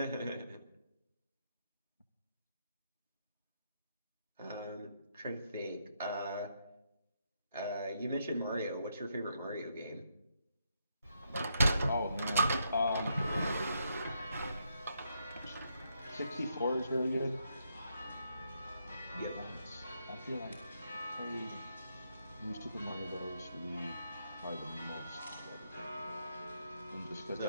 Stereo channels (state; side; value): inverted; both; correlation -0.78